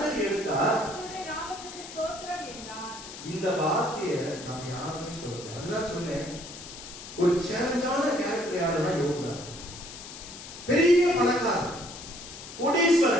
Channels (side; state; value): left; noise; hiss, 13 dB below the sound